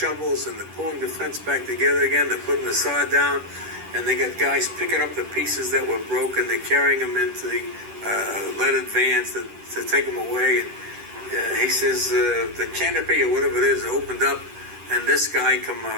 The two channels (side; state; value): left; late; 10 ms